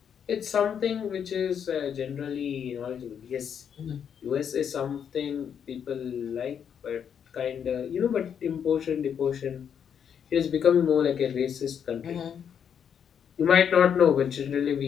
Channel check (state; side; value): quieter; right; 8.0 dB